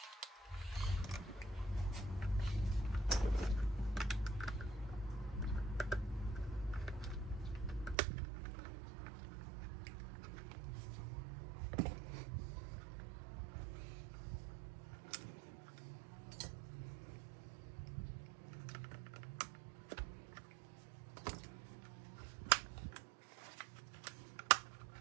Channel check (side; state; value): left; drops out; at 8.0 s